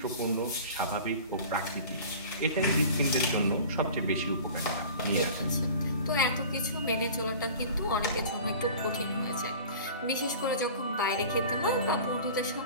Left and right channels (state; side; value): inverted; both; correlation -0.40